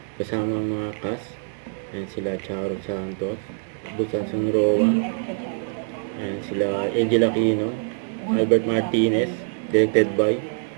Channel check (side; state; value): left; silent; 63 dB below the other